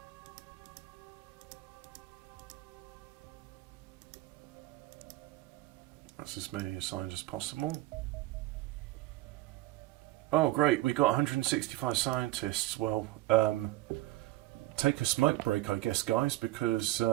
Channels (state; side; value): quieter; left; 17.7 dB